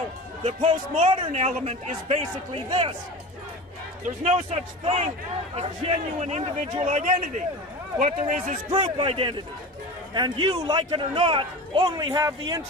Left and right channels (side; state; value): both; normal; correlation 0.32